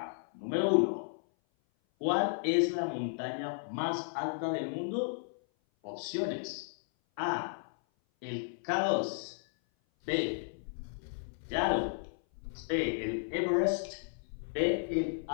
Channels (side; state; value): right; silent; 55 dB below the other